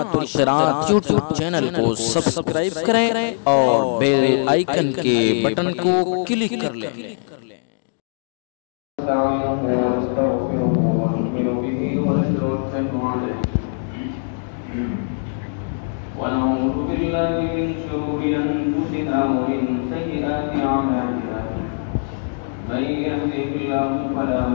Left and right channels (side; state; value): right; silent; digital silence